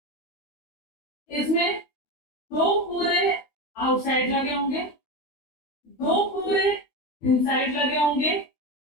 इसमें 2 पूरे आउटसाइड लगे होंगे, 2 पूरे इनसाइड लगे होंगे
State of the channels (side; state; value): right; late; 12 ms